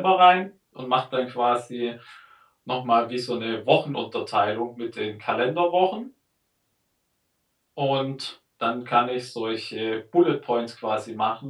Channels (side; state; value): both; identical; correlation 1.00